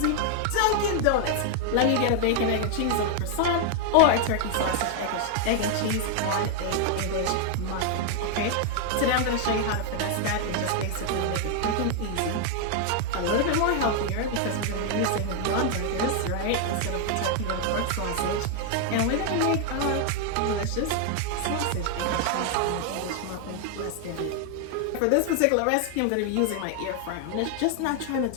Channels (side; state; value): both; different; correlation 0.00